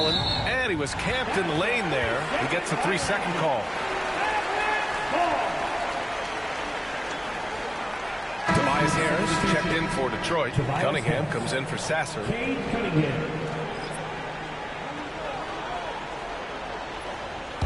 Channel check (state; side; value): identical; both; correlation 1.00